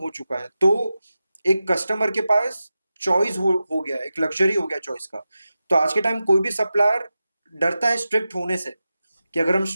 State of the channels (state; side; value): inverted; both; correlation -0.93